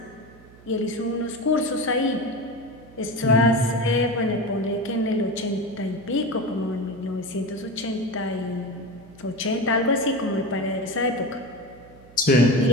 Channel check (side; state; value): right; noise; hum, 23 dB below the sound